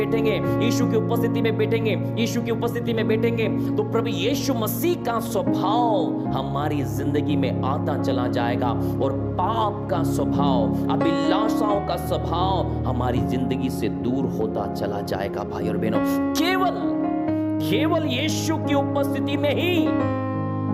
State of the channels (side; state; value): both; identical; correlation 1.00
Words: यीशु की उपस्थिति में बैठेंगे, यीशु की उपस्थिति में बैठेंगे, तो प्रभु यीशु मसीह का स्वभाव हमारी जिंदगी में आता चला जाएगा, और पाप का स्वभाव, अभिलाषाओं का स्वभाव हमारी जिंदगी से दूर होता चला जाएगा भाई और बहनों। केवल यीशु की उपस्थिति में ही